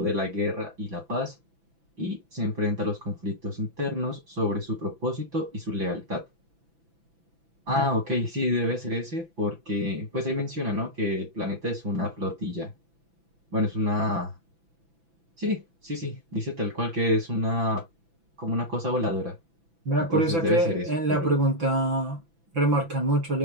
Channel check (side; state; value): left; late; 6.0 ms